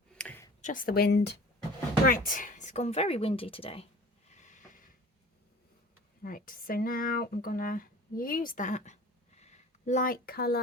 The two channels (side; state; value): both; normal; correlation 0.43